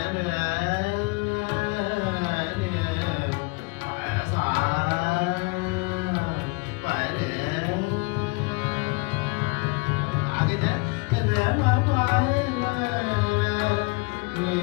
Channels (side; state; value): right; quieter; 27.9 dB